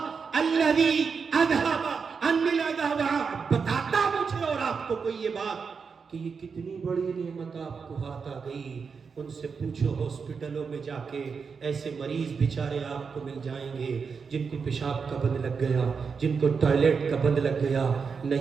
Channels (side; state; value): left; quieter; 5.6 dB